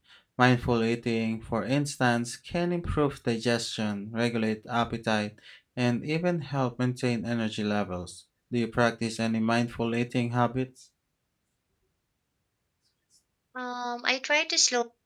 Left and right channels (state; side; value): identical; both; correlation 1.00